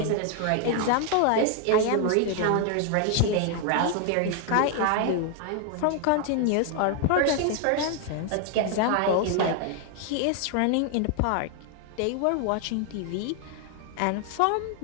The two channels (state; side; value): different; both; correlation 0.00